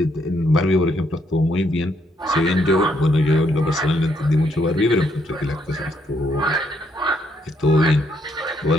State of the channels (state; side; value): normal; both; correlation 0.73